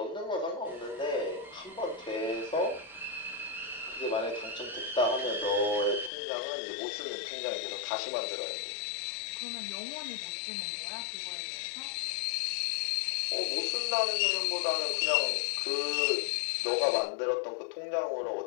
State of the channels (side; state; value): right; drops out; at 6.1 s